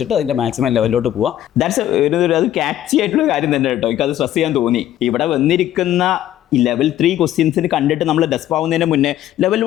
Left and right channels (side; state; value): right; quieter; 12.4 dB